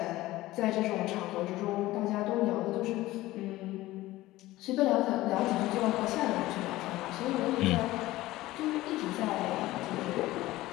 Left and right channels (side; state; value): right; quieter; 17.3 dB